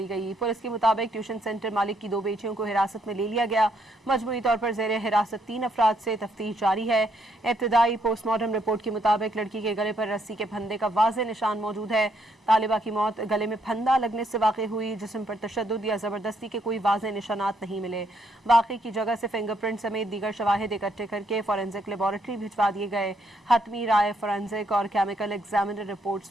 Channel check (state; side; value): normal; both; correlation 0.73